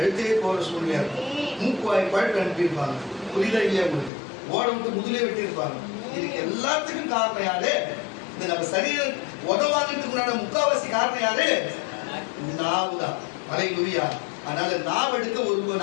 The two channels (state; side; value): drops out; right; at 4.1 s